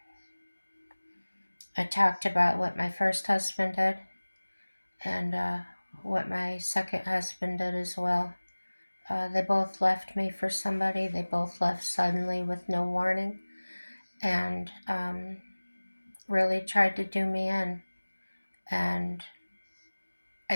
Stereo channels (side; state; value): both; inverted; correlation -1.00